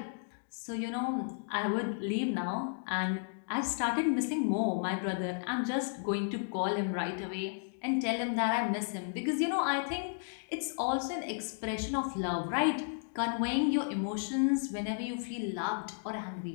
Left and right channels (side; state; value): right; silent; digital silence